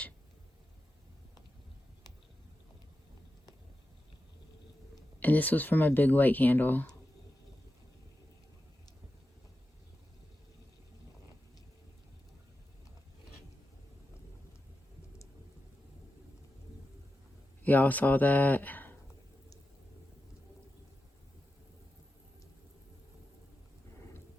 And this was for my big white candle. Y'all saw that?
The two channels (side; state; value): both; normal; correlation 0.91